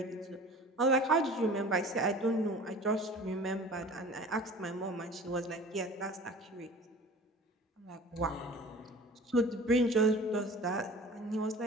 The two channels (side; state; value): both; normal; correlation 0.43